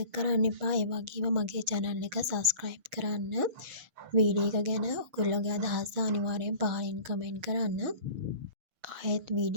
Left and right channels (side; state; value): left; late; 6.6 ms